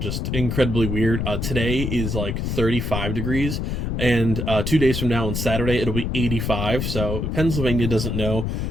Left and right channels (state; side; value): noise; left; rumble, 2 dB below the sound